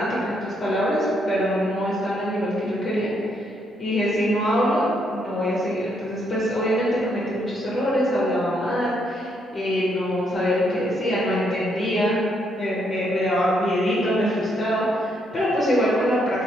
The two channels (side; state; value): both; normal; correlation 0.74